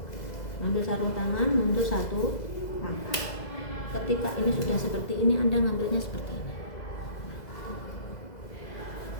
Ambil sarung tangan, mundur 1 langkah. Ketika ini sudah seperti ini, Anda ngambilnya seperti ini.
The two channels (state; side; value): late; right; 2.0 ms